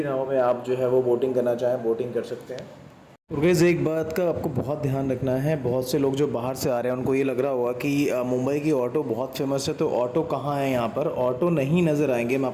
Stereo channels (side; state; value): both; identical; correlation 1.00